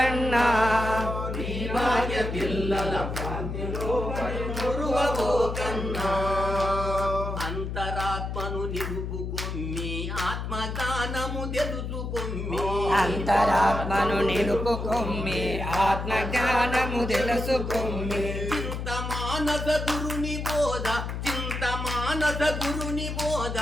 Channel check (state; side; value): noise; left; hum, 4 dB below the sound